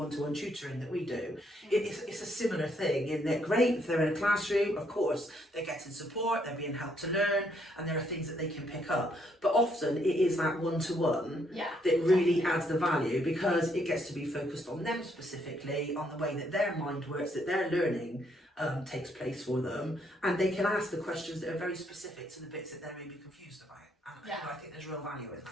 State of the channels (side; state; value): both; normal; correlation 0.72